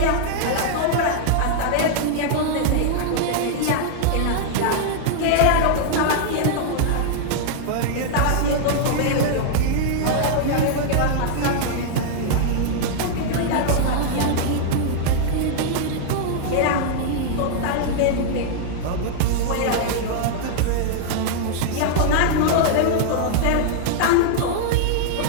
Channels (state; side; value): different; both; correlation -0.01